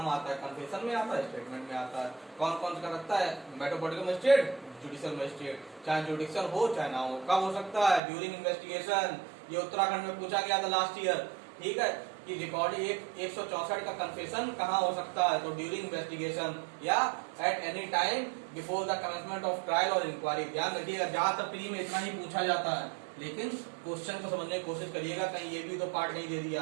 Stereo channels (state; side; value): drops out; left; at 8.0 s